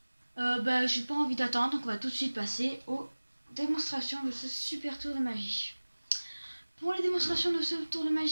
J'ai pas envie d'attendre, donc on va tout de suite passer aux démonstrations de ce super tour de magie. Pour les démonstrations de ce tour de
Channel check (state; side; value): inverted; both; correlation -1.00